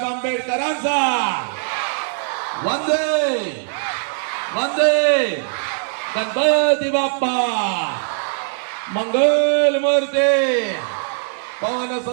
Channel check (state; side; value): silent; left; 58 dB below the other